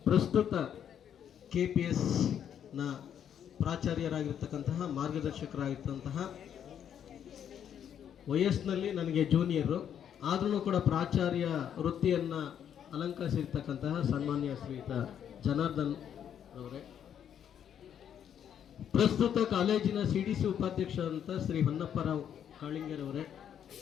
ಪ್ರಸ್ತುತ KPSನ ಪ್ರಾಚಾರ್ಯರಾಗಿರ್ತಕ್ಕಂತಹ, ಮಾರ್ಗದರ್ಶಕರಾಗಿರ್ತಂತಹ, ವಯಸ್ಸಿನಲ್ಲಿ ನನಗೆ ಜೂನಿಯರು ಆದ್ರೂ ಕೂಡ ಪ್ರಾಚಾರ್ಯ ವೃತ್ತಿಯನ್ನು ಅಲಂಕರಿಸಿರ್ತಕ್ಕಂತಹ ಸನ್ಮಾನ್ಯ ಶ್ರೀಯುತ ಜನಾರ್ದನ್ ಅವರೇ, ಪ್ರಸ್ತುತ ಕಾಲೇಜಿನ CDC ಉಪಾಧ್ಯಕ್ಷರಂತ ಶ್ರೀ ಹೊನ್ನಪ್ಪರಾವ್ ಕಾಳಿಂಗರವರೇ,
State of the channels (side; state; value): right; quieter; 9.1 dB